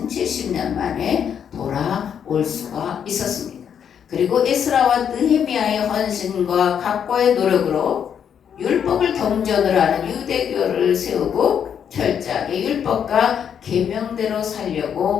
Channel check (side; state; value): right; quieter; 8.2 dB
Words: 70년 만에 돌아올 수가 있었습니다. 그리고 에스라와 느헤미야의 헌신과 각고의 노력으로 율법을 경전으로 하는 유대교를 세우고 철저하게 율법과 계명대로